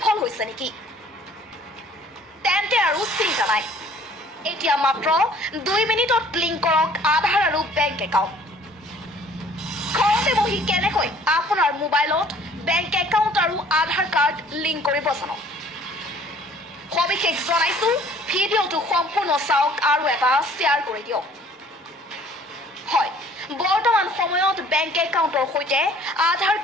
হৈছে নেকি তেন্তে আৰু চিন্তা নাই এতিয়া মাত্ৰ 2 মিনিটত লিংক কৰক আধাৰ আৰু বেংক একাউণ্ট ঘৰতে বহি কেনেকৈ আপোনাৰ মোবাইলত বেংক একাউণ্ট আৰু আধাৰ কাৰ্ড লিংক কৰিব জানক সবিশেষ জনাইছো ভিডিঅ'টো সম্পূৰ্ণ চাওক আৰু এটা শ্বেয়াৰ কৰি দিয়ক হয় বৰ্তমান সময়ত বেংক একাউণ্টৰ সৈতে আধাৰ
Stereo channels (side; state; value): both; normal; correlation 0.55